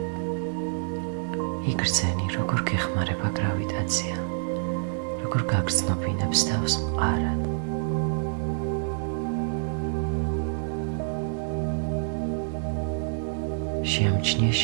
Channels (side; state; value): left; silent; digital silence